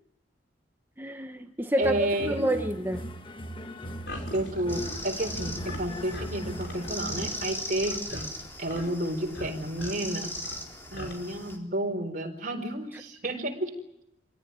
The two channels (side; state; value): both; normal; correlation 0.36